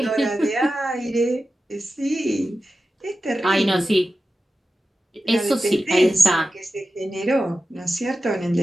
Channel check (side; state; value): both; normal; correlation 0.93